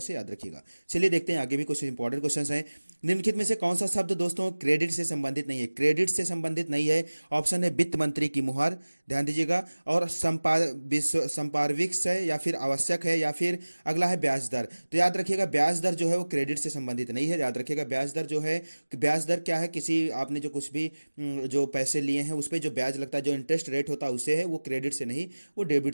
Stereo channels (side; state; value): both; inverted; correlation -1.00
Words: याद रखिएगा। चलिए देखते हैं आगे भी कुछ इंपॉर्टेंट क्वेश्चन हैं। निम्नलिखित में से कौन सा शब्द दोस्तों क्रेडिट से संबंधित नहीं है? क्रेडिट से संबंधित नहीं है। ऑप्शन है वित्त मंत्री की मुहर। ध्यान दीजिएगा। और संपार्विक्स है, या फिर आवश्यक है, या फिर अगला है ब्याज दर। तो याद रखिएगा, ब्याज दर जो है वो क्रेडिट से संबंधित नहीं है। याद रखिएगा, ब्याज दर जो है, ब्याज दर क्या है, किसी आपने जो कुछ भी जो पैसे लिए हैं उस पर जो ब्याज लगता है, जो इंटरेस्ट रेट होता है उससे है, वो क्रेडिट से नहीं, वो डेबिट